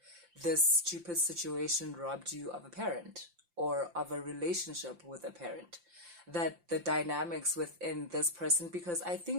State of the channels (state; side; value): late; left; 5.8 ms